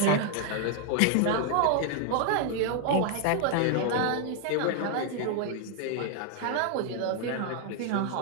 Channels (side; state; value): both; different; correlation 0.00